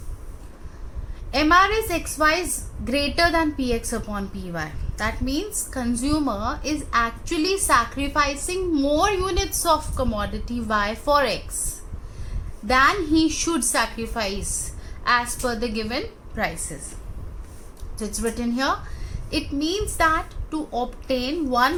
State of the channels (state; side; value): identical; both; correlation 1.00